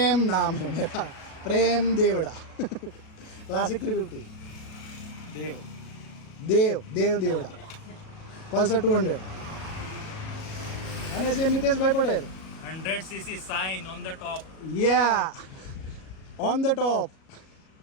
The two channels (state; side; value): late; right; 37 ms